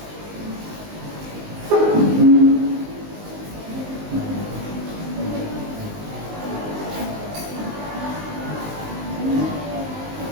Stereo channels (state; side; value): late; left; 19 ms